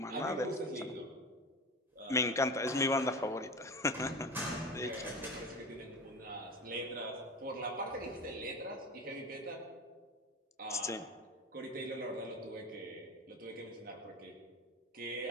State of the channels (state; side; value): normal; both; correlation 0.29